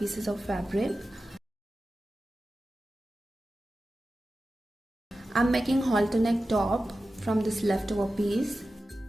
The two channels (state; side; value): normal; both; correlation 0.93